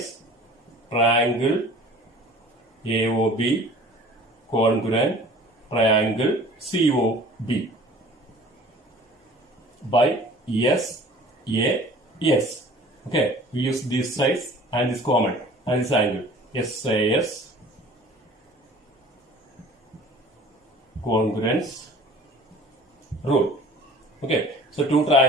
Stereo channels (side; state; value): both; normal; correlation 0.47